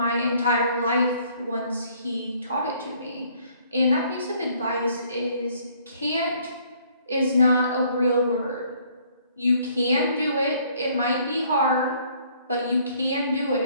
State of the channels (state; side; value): inverted; both; correlation -0.62